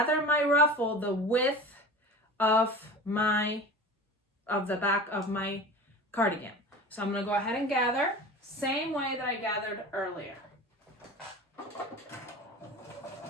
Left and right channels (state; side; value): normal; both; correlation 0.34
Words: my ruffle the width of the back of my cardigan. So I'm gonna go ahead and gather, same way that I gathered earlier.